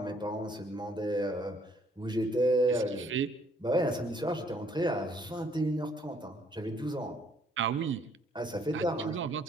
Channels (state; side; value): normal; both; correlation 0.64